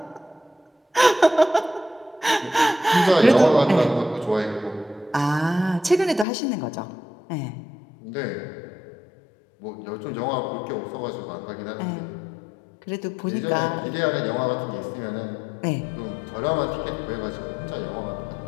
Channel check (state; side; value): drops out; right; at 6.2 s